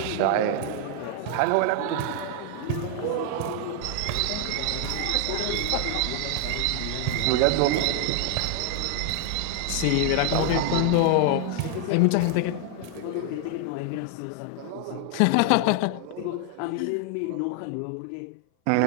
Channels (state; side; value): different; both; correlation 0.00